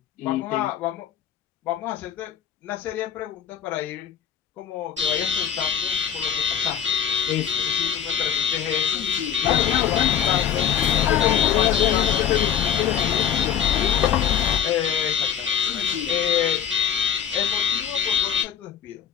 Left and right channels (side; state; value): right; quieter; 8.4 dB